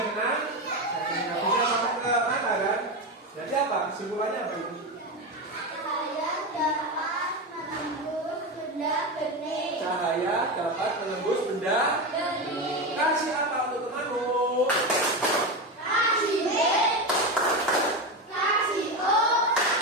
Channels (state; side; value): normal; both; correlation 0.17